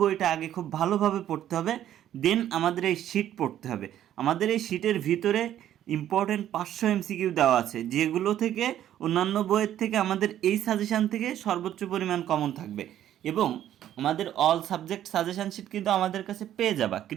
আগে খুব ভালোভাবে পড়তে হবে, দেন আমাদের এই শিট পড়তে হবে। আমাদের এই শিটের ভিতরে ইম্পর্টেন্ট 500 এমসিকিউ দেওয়া আছে, যেগুলো থেকে অন্যান্য বইয়ের থেকে আমাদের এই সাজেশান থেকে সর্বোচ্চ পরিমাণ কমন থাকবে। এবং আমাদের অল সাবজেক্ট সাজেশান শিট কিন্তু আমাদের কাছে পেয়ে যাবা।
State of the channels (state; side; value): quieter; left; 11.5 dB